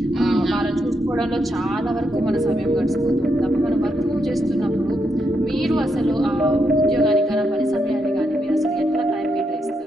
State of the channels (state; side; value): normal; both; correlation 0.81